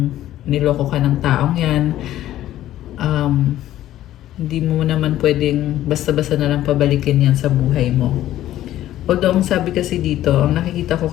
niloko ka ng taong yan. Hindi mo naman pwedeng basta-basta na lang pabalikin yan sa buhay mo. Although, ang sabi kasi dito, ang nakikita ko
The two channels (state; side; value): quieter; right; 13.4 dB